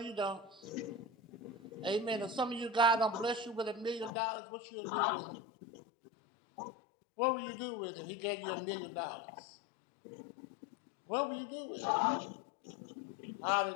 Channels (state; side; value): drops out; right; at 4.1 s